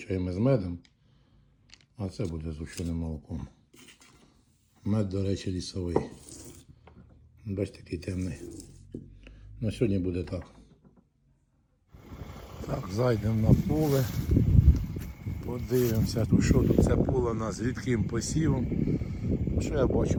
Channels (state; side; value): identical; both; correlation 1.00